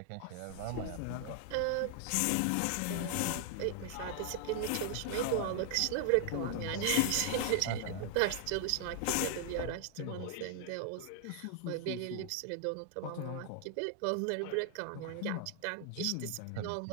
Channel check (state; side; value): different; both; correlation 0.00